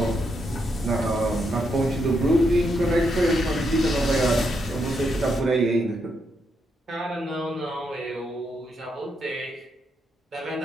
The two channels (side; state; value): both; normal; correlation 0.80